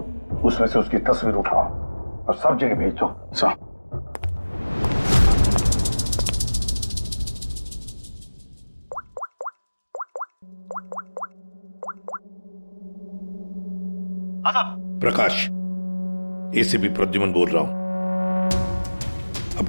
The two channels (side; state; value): both; inverted; correlation -1.00